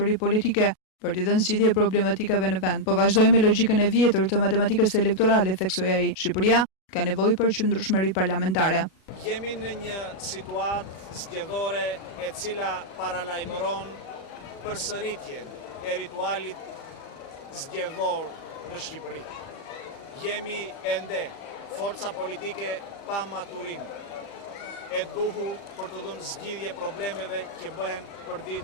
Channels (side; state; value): right; late; 37 ms